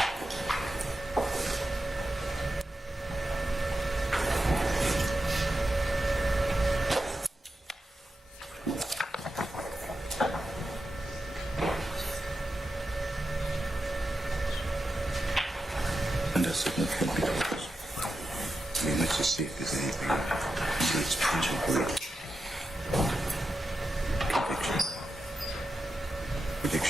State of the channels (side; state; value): both; normal; correlation 0.90